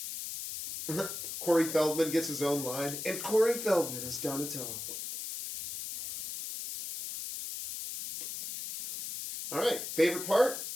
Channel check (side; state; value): left; noise; hiss, 7 dB below the sound